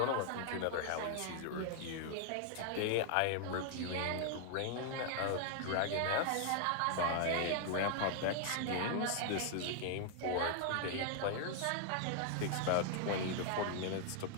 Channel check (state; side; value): different; both; correlation 0.00